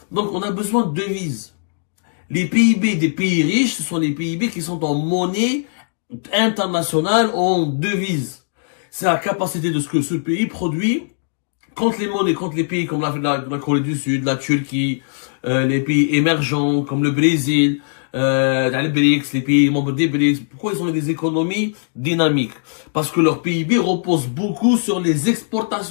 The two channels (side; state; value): right; silent; digital silence